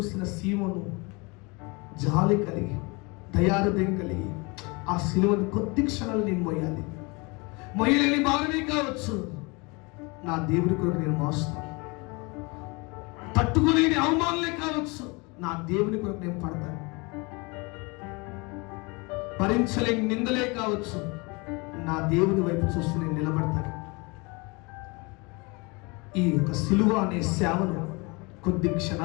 సీమోను జాలి కలిగి, దయాహృదయం కలిగి, ఆ సిలువను కొద్ది క్షణాలు నేను మోయాలి. మొయ్యలేని భారమే కావచ్చు, నా దేవుడి కొరకు నేను మోస్తాను. తట్టుకోలేని అవమానాలే కావచ్చు, నా దేవుని కొరకు నేను పడతాను. భరించలేని నిందలే కావచ్చు, నా దేవుని వైపు చూస్తూ నేను నిలబడతాను. ఈ యొక్క సిలువ అనే సేవను కొద్ది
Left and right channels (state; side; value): quieter; right; 27.9 dB